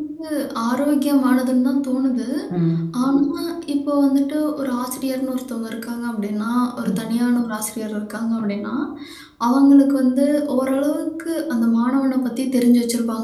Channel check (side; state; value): both; identical; correlation 1.00